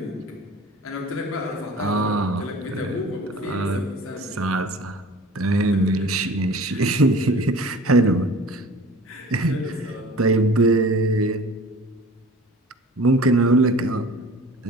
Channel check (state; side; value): normal; both; correlation 0.44